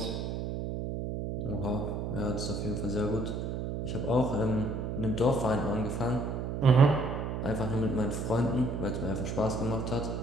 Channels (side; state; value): right; noise; hum, 3 dB below the sound